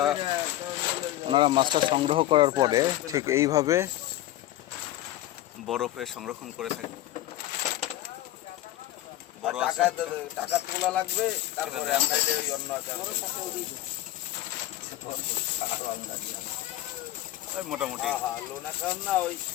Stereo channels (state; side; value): quieter; right; 14.8 dB